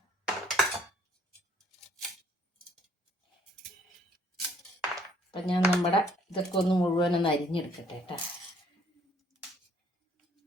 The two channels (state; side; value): normal; both; correlation 0.63